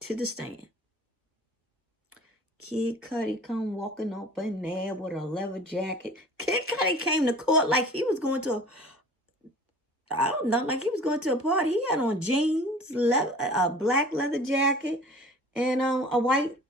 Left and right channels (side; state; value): both; normal; correlation 0.44